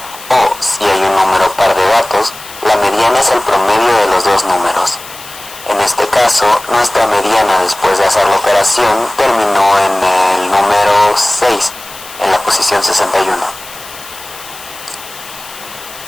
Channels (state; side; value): noise; left; hiss, 16 dB below the sound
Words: o si hay un número par de datos, la mediana es el promedio de los dos números. En este caso, nuestra mediana después de hacer la operación terminó en el número 6, en la posición 61.